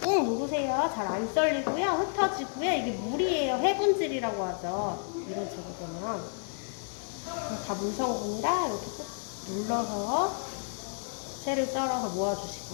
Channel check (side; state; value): right; silent; 57 dB below the other